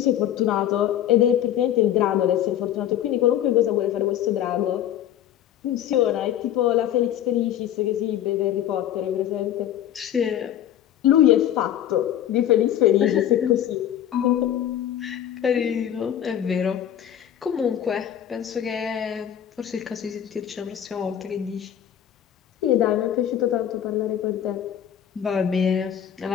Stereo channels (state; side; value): quieter; right; 10.7 dB